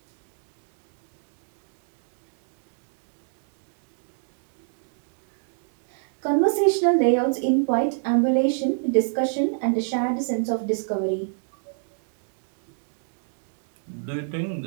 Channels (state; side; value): silent; left; digital silence